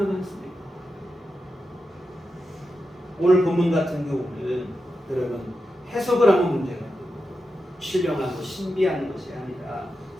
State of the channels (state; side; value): normal; both; correlation 0.89